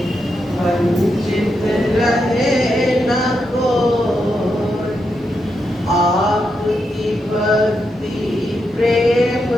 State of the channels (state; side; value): normal; both; correlation 0.84